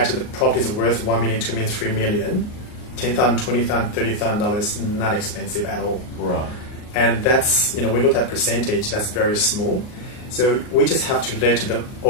the properties worth $1 million, $2 million, $3 million, $10,000, $20,000, $30,000, not expensive at all. Right. And that's, we look at percentage, that's very small. So we just have to let the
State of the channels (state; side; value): late; right; 38 ms